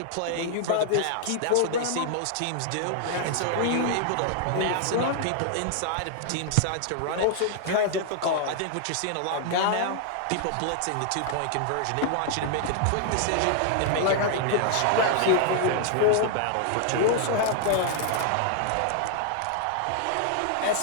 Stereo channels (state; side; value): different; both; correlation 0.00